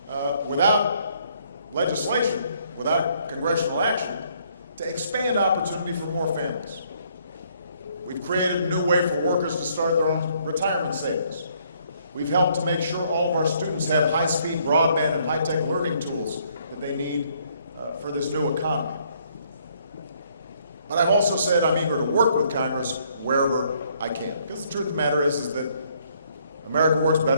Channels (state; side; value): inverted; both; correlation -0.67